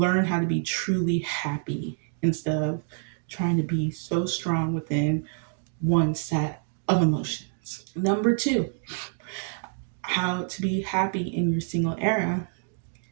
how to be truly happy instead of trying to be so strong within one set of emotions. Number two, how to be happy in your single era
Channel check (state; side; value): silent; left; 60 dB below the other